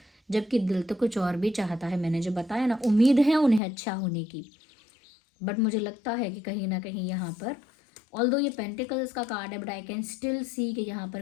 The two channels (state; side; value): drops out; right; at 3.6 s